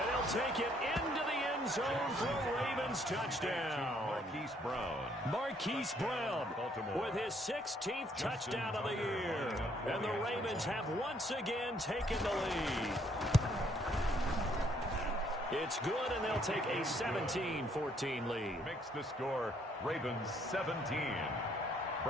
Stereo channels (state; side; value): normal; both; correlation 0.67